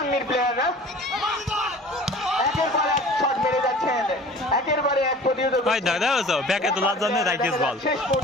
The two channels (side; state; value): both; normal; correlation 0.44